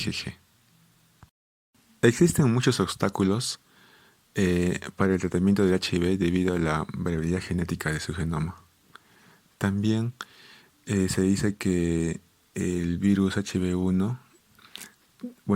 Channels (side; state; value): both; identical; correlation 1.00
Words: Existen muchos obstáculos para el tratamiento del HIV debido a la variabilidad genética de su genoma. También se dice que el virus HIV-1,